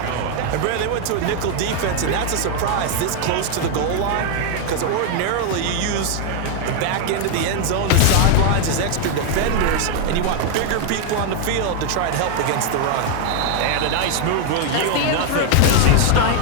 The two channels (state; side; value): different; both; correlation 0.00